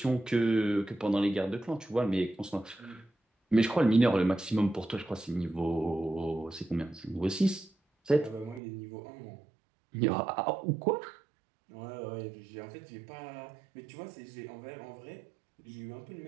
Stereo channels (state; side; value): drops out; left; at 8.6 s